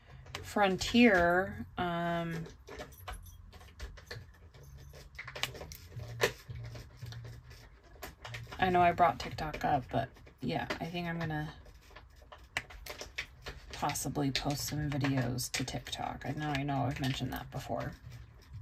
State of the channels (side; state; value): both; identical; correlation 1.00